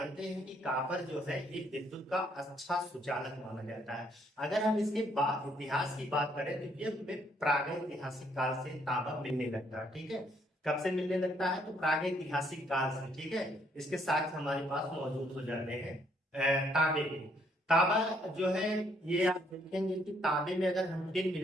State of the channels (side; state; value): both; normal; correlation 0.69